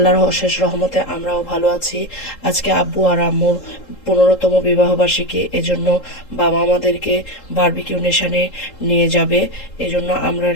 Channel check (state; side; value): late; right; 3.7 ms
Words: অশেষ রহমতে আমরাও ভালো আছি। আজকে আব্বু আর আম্মুর 15তম বিবাহবার্ষিকী, এজন্য বাবা আমাদেরকে বারবিকিউ নেশনে নিয়ে যাবে। এজন্য আমরা